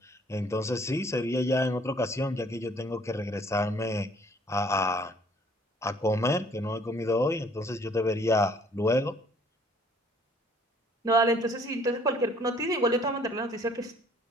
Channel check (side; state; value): both; normal; correlation 0.59